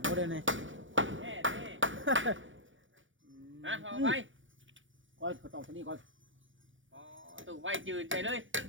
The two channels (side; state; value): left; late; 0.56 ms